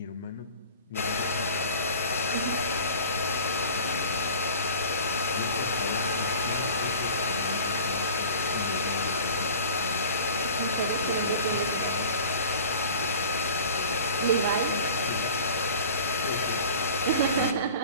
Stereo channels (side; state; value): both; inverted; correlation -0.41